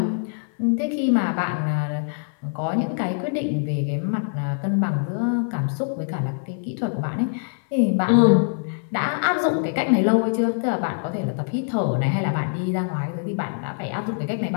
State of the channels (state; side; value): silent; right; digital silence